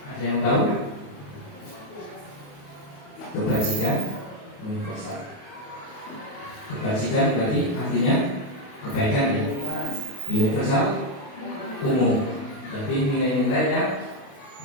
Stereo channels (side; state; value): right; late; 28 ms